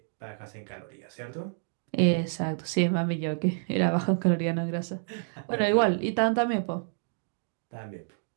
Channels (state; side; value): silent; left; digital silence